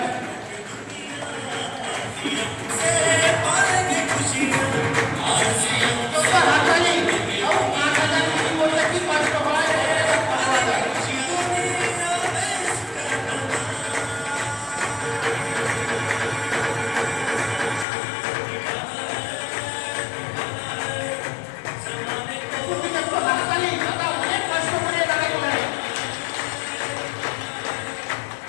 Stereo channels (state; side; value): drops out; right; at 17.9 s